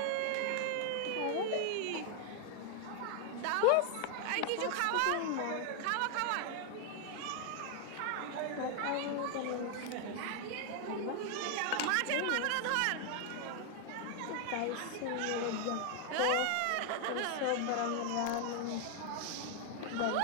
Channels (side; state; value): both; different; correlation 0.00